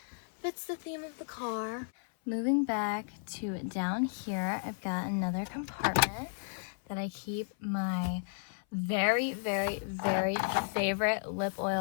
fits the theme of the car. Moving back to down here, I've got another compartment that I keep my very, very, very favorite lip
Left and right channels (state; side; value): silent; right; 55 dB below the other